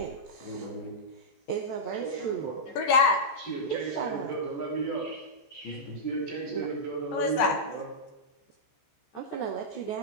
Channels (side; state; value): right; late; 15 ms